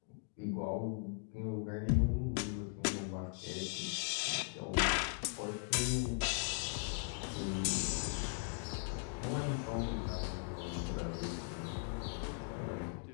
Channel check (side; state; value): right; quieter; 37.1 dB